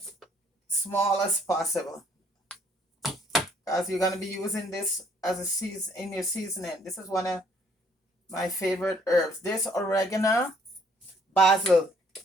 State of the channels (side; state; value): both; normal; correlation 0.63